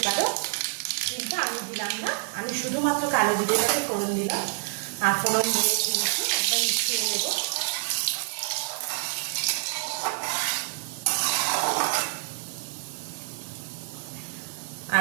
পারো, কিন্তু আমি দিলাম না। আমি শুধুমাত্র কালো জিরেটাকে ফোড়ন দিলাম, আর ফোড়ন দিয়ে কিন্তু একদম মিশিয়ে নেব।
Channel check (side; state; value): left; silent; 60 dB below the other